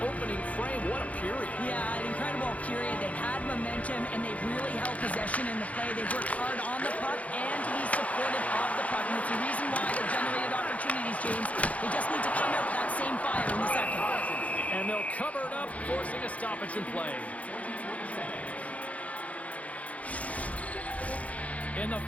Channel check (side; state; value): right; late; 0.067 ms